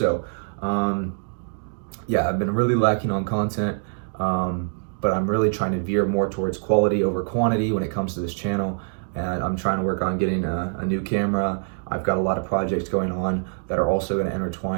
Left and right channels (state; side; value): silent; left; digital silence